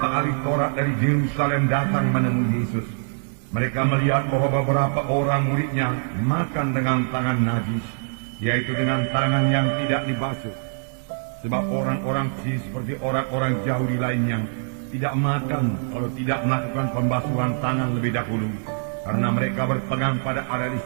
ahli Taurat dari Yerusalem datang menemui Yesus. Mereka melihat bahwa beberapa orang muridnya makan dengan tangan najis, yaitu dengan tangan yang tidak dibasuh. Sebab orang-orang seperti orang-orang Yahudi lainnya tidak makan kalau tidak melakukan pembasuhan tangan lebih dahulu, karena mereka berpegang pada adat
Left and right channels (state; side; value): silent; left; digital silence